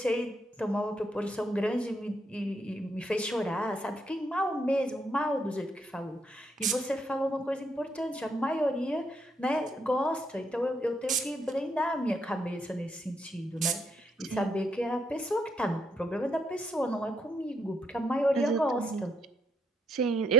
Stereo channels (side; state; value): both; normal; correlation 0.76